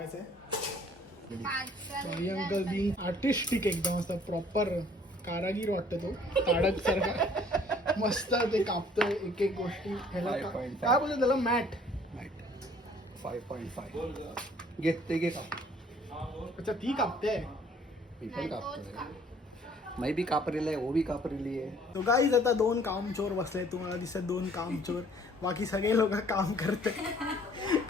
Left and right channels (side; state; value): both; normal; correlation 0.57